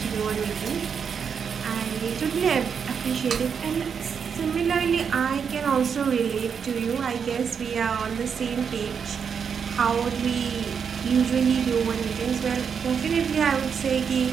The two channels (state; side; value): quieter; left; 6.7 dB